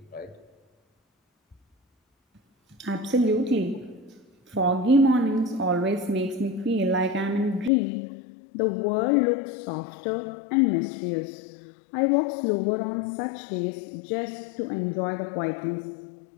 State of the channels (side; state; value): right; drops out; at 7.7 s